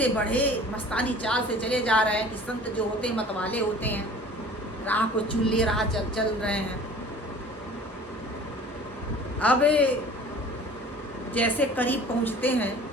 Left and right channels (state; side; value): normal; both; correlation 0.46